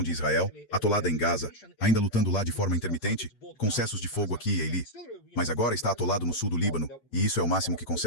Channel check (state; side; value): late; right; 9.2 ms